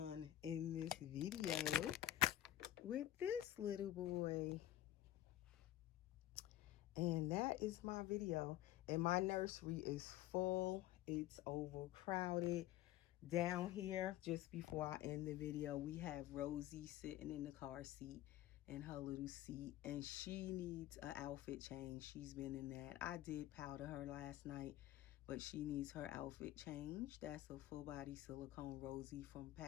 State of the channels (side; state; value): right; quieter; 14.0 dB